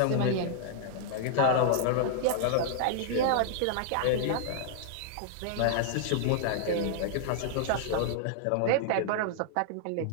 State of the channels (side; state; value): both; different; correlation -0.01